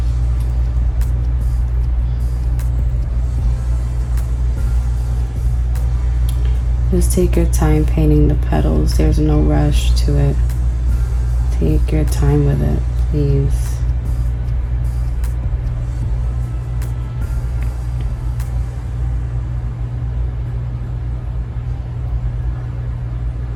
Just take your time painting the petals. There's no rush to it. Take your time with it, please.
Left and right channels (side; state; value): both; identical; correlation 1.00